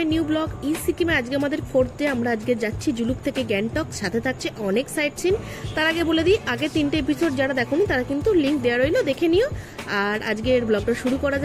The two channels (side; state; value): both; identical; correlation 1.00